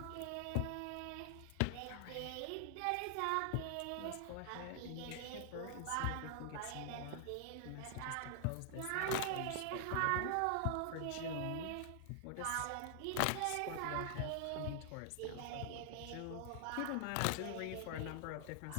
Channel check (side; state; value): both; different; correlation 0.00